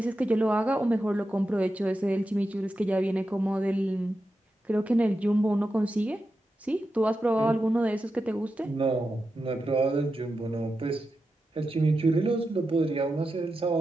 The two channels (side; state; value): both; normal; correlation 0.90